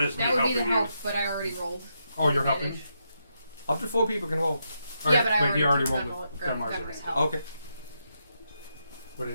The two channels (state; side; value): inverted; both; correlation -0.82